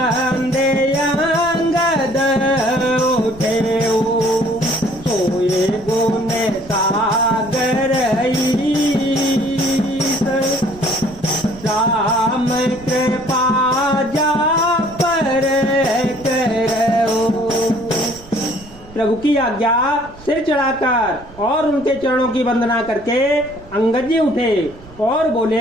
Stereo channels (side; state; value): right; noise; rumble, 20 dB below the sound